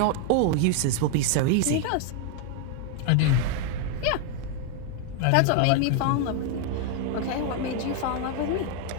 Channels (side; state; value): both; different; correlation 0.01